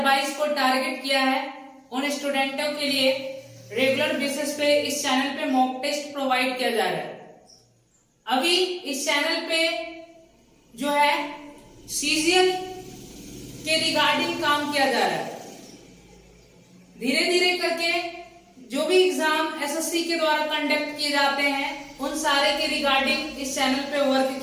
को टारगेट किया है उन स्टूडेंटों के लिए रेगुलर बेसिस पे इस चैनल पे मॉक टेस्ट प्रोवाइड किया जा रहा है। अभी इस चैनल पे जो है सीजीएल के रिगार्डिंग काम किया जा रहा है। धीरे धीरे करके जो भी एग्जाम एसएससी के द्वारा कंडक्ट किए जाते हैं उन सारे के रिगार्डिंग इस चैनल पे वर्क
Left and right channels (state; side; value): identical; both; correlation 1.00